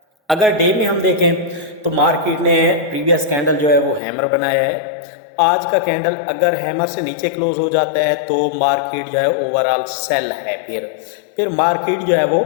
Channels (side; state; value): right; drops out; at 4.0 s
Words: अगर डे में हम देखें तो मार्केट ने प्रीवियस कैंडल जो है वो हैमर बनाया है। आज का कैंडल अगर हैमर से नीचे क्लोज हो जाता है तो मार्केट जो है ओवरऑल सेल है। फिर मार्केट जो है वो